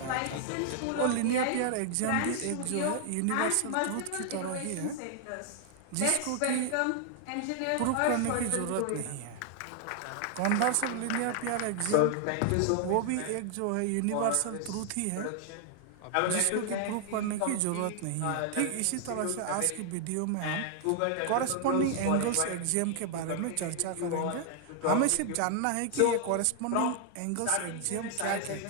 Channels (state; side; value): different; both; correlation 0.00